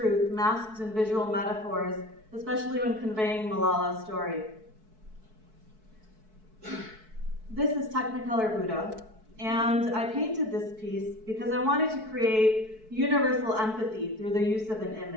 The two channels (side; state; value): left; late; 4.6 ms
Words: masked in visual metaphors, especially when conveying Malala's story. This is Technicolor Buddha, and I painted this piece because I wanted to create universal empathy through the use of an